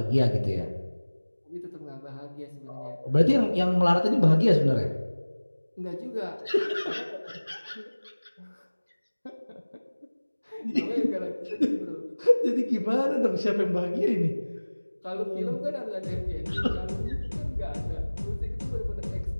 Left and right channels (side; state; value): both; inverted; correlation -1.00